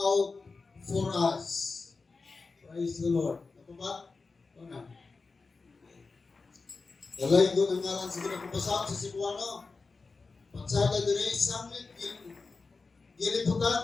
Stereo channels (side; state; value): right; quieter; 4.2 dB